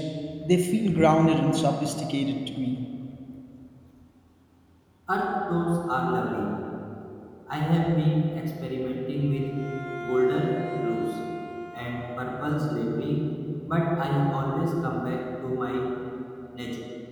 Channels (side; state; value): both; identical; correlation 1.00